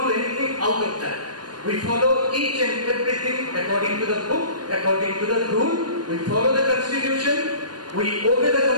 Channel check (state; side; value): late; left; 0.70 ms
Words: do anything out of that. We follow each and everything according to the book, according to the rule. We follow the Constitution, we obey the